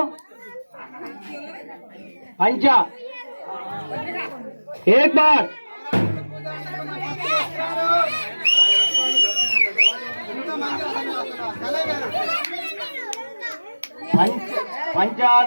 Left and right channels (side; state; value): both; inverted; correlation -1.00